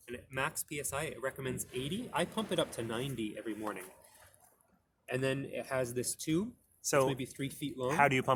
And at max PSI, it recommends 80. I pump it up to 90 every morning. And then it has this tube, So maybe 3 feet long. how do you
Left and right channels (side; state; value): both; identical; correlation 1.00